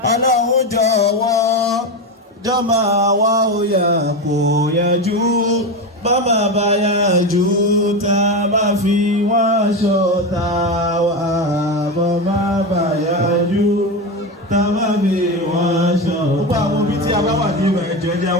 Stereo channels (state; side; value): normal; both; correlation 0.17